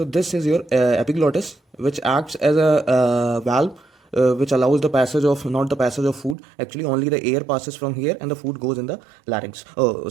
this is your epiglottis, which acts as a valve, which allows the passage of, not the passage of food, actually only the air passes from here and the food goes in the larynx,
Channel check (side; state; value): left; drops out; at 6.4 s